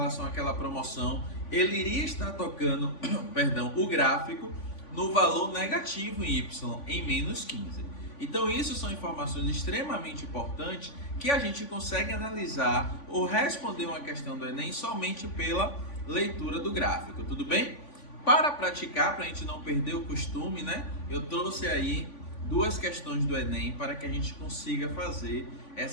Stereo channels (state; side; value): late; right; 3.5 ms